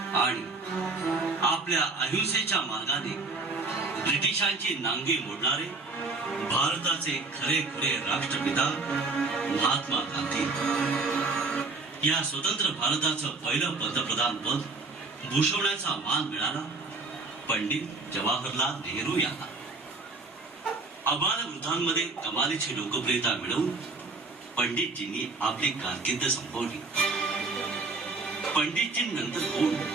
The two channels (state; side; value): quieter; left; 3.7 dB